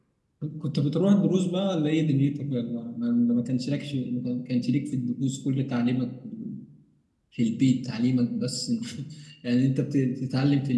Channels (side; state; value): both; identical; correlation 1.00